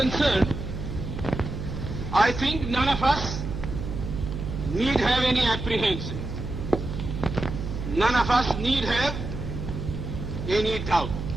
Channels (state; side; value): noise; right; hum, 6 dB below the sound